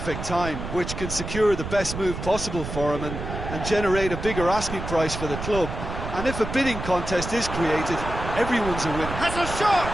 time, which can secure the best move possible for him and generate a bigger asking price for the club. And if a bidding contest is created, everyone's a winner. Has a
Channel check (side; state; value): right; noise; rumble, 7 dB below the sound